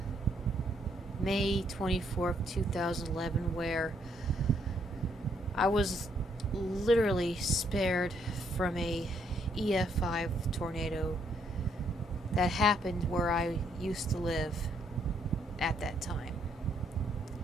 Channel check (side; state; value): both; normal; correlation 0.71